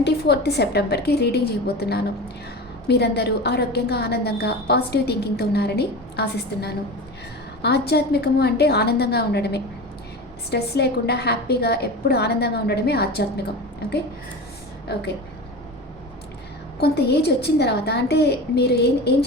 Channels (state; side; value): normal; both; correlation 0.30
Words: సెప్టెంబర్కి రీడింగ్ చేయబోతున్నాను. మీరందరూ ఆరోగ్యంగా, ఆనందంగా, పాజిటివ్ థింకింగ్తో ఉన్నారని ఆశిస్తున్నాను. ఆధ్యాత్మికము అంటే ఆనందంగా ఉండడమే. స్ట్రెస్ లేకుండా హ్యాపీగా ఎప్పుడు ఆనందంగా ఉండడమే ఆధ్యాత్మికం. ఓకే ఓకే కొంత ఏజ్ వచ్చిన తర్వాత అంటే మీరు ఏం